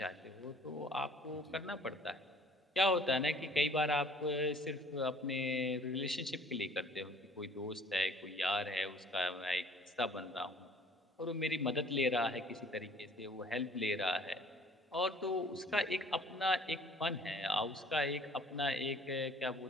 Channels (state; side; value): normal; both; correlation 0.53